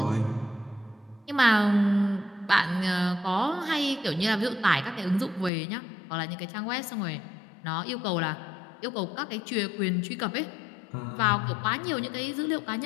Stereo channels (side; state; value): right; drops out; at 5.5 s